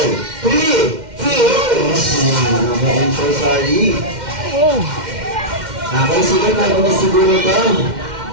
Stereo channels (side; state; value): left; late; 2.1 ms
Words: 3, 2, 1. Okay, I'm so sorry. Oh. Okay, sige, bago na siguro to.